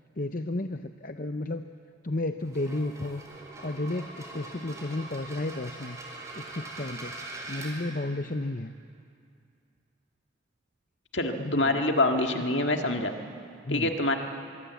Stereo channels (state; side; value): normal; both; correlation 0.23